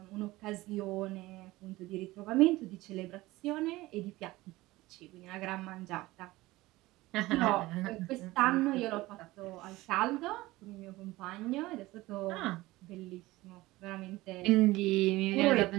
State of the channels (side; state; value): left; quieter; 19.1 dB